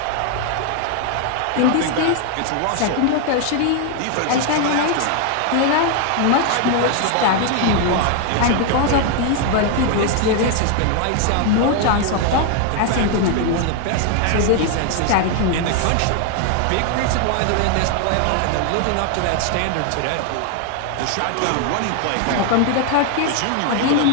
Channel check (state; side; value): different; both; correlation 0.00